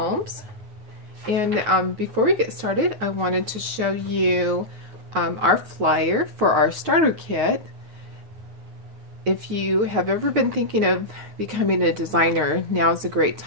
And before we get started, I wanted to show you our flyer for our starter kit. If you have ever been thinking of becoming a designer, now is a great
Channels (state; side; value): late; left; 9.1 ms